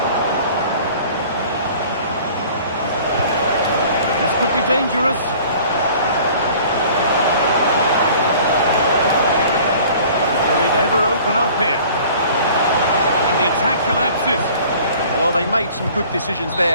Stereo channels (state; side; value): inverted; both; correlation -0.49